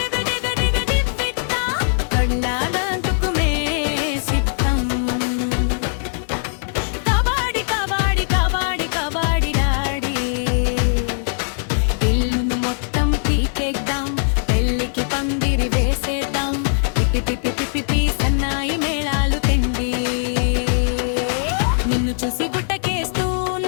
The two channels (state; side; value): silent; right; digital silence